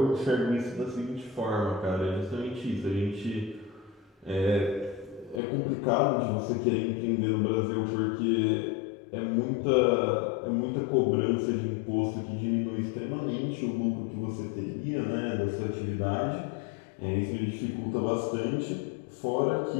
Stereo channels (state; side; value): drops out; right; at 5.4 s